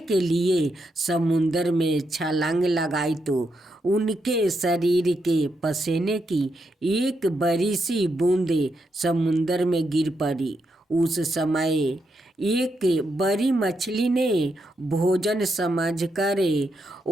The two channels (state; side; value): normal; both; correlation 0.82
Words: के लिए समुद्र में छलांग लगाई तो उनके शरीर के पसीने की एक बड़ी सी बूंदे समुद्र में गिर पड़ी। उस समय एक बड़ी मछली ने भोजन समझकर